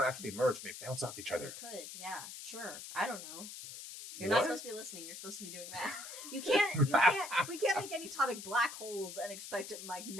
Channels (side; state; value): left; noise; hiss, 10 dB below the sound